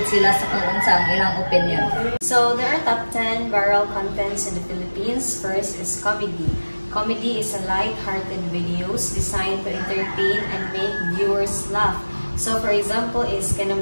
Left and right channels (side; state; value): both; inverted; correlation -1.00